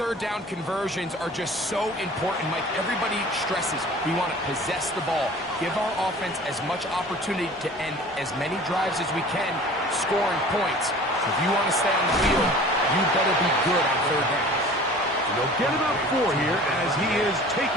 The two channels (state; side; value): normal; both; correlation 0.44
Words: down conversions are just so important, Mike. Everybody stresses we want to possess the ball, give our offense as much opportunity to end as many drives as we can, scoring points. So if you want to stay on the field, you better be good on third down. They'll get about 4 here as he is